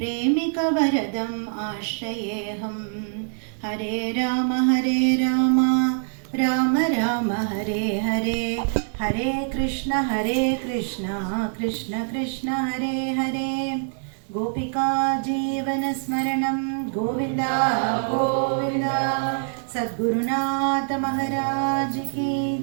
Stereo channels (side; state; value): left; silent; 60 dB below the other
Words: आश्रयेऽहं। हरे राम राम राम हरे हरे, हरे कृष्ण कृष्ण कृष्ण हरे हरे। गोपिका जीवनस्मरणं गोविन्दा गोविन्दा। सद्गुरुनाथ महाराज की